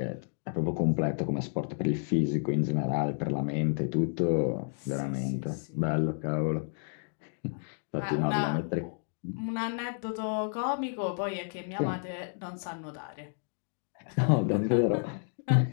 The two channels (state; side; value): silent; right; 57 dB below the other